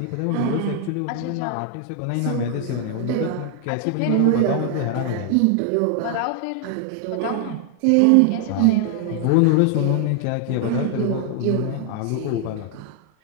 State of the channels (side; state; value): both; different; correlation 0.00